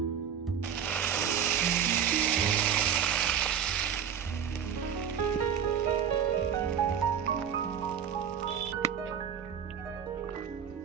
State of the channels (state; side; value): quieter; left; 8.3 dB